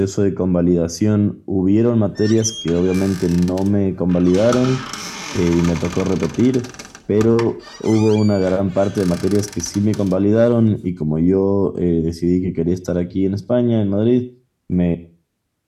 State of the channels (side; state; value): both; identical; correlation 1.00